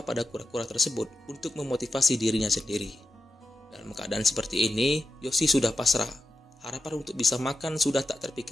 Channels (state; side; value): normal; both; correlation 0.89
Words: pada kura-kura tersebut untuk memotivasi dirinya sendiri. Dalam keadaan seperti ini, Yoshi sudah pasrah. Harapan untuk bisa makan sudah tak